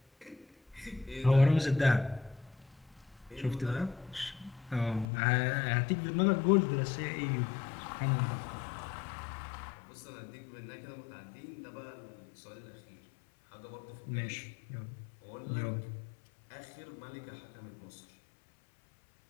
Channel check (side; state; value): right; drops out; at 5.1 s